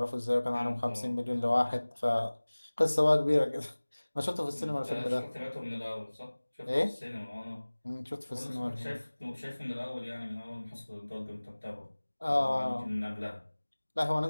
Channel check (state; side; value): inverted; both; correlation -1.00